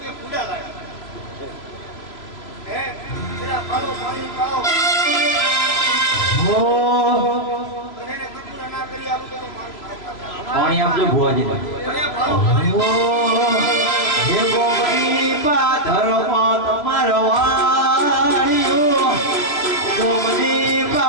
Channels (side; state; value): right; late; 3.0 ms